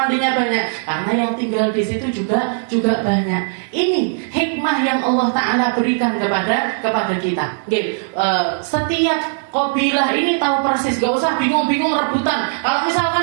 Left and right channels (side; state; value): left; silent; digital silence